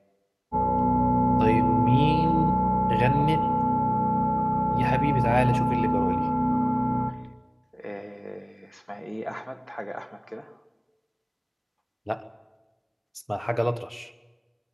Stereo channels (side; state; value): both; identical; correlation 1.00